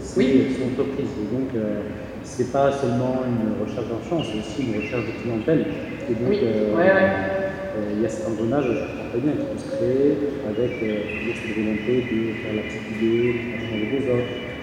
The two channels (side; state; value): both; identical; correlation 1.00